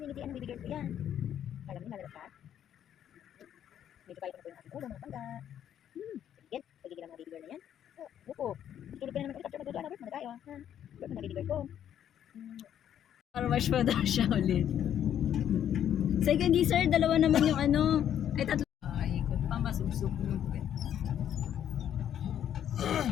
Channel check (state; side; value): quieter; right; 10.0 dB